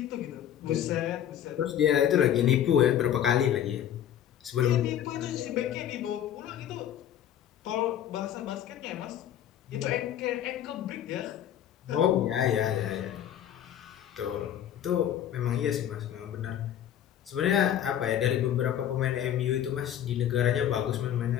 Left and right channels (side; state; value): right; quieter; 10.4 dB